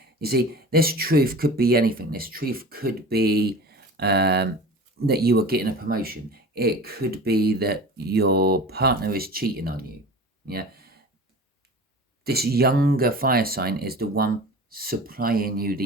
You see, this truth could be anything. This truth could be that you are getting a promotion. It could be that your partner is cheating on you. Yeah. This younger fire sign is the one supplying you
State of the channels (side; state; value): both; normal; correlation 0.37